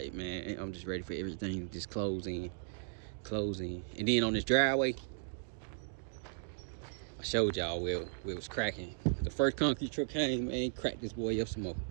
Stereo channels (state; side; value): silent; left; digital silence